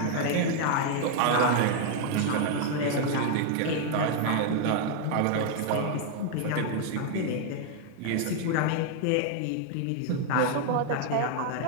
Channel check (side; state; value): both; different; correlation 0.00